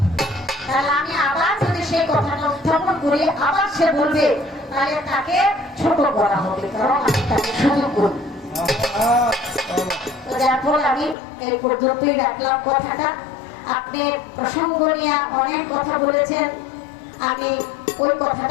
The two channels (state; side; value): drops out; right; at 11.2 s